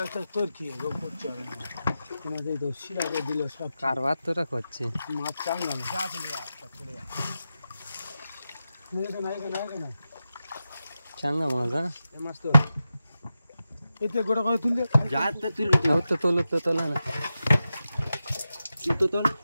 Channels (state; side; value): inverted; both; correlation -0.92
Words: কারবার তোরা করছে মাছ চাঙ্গা চাঙ্গা মাছ হ্যাঁ মাছ তো এতে গোটা করে তুললে তো তোলো তো তোলা না